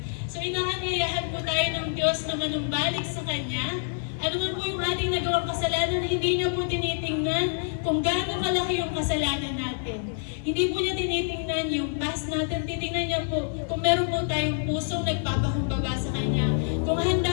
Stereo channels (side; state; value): right; silent; 60 dB below the other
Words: So inaanyayahan po tayo ng Diyos na manumbalik sa Kanya. Ano man po yung ating nagawang kasalanan, hindi niya po tinitingnan kung gaano kalaki yung kasalanan natin. Hindi po niya tinitingnan yung past natin, titingnan niya po kung meron po tayong pusong nagpapakumbaba sa Kanya. Kung